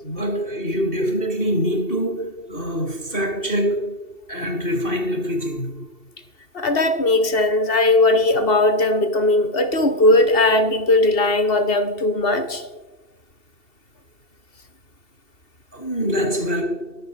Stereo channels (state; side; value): late; right; 2.7 ms